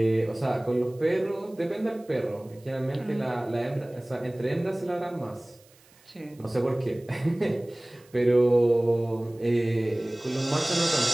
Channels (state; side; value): noise; right; hiss, 29 dB below the sound